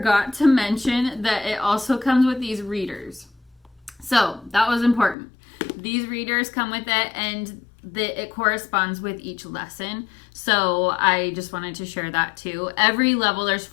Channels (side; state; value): right; drops out; at 5.2 s